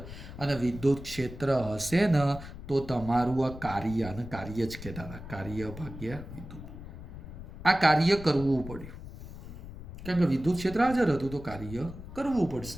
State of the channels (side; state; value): left; noise; rumble, 12 dB below the sound